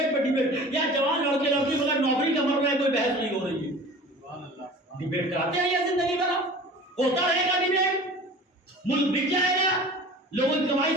پہ ڈیبیٹ، یا جوان لڑکے لڑکی مگر نوکری کا مر رہا ہے، کوئی بحث نہیں ہو رہی ہے۔ ڈیبیٹ کراتے رہیے زندگی بھر، ہوتا رہے گا ڈیبیٹ، ملک بک جائے گا، لوگوں کی کمائی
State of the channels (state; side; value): normal; both; correlation 0.41